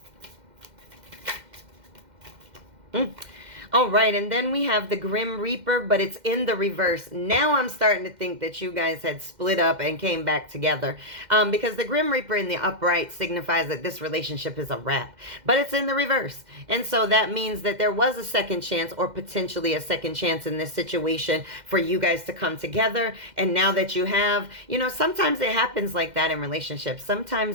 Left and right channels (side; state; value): left; late; 2.1 ms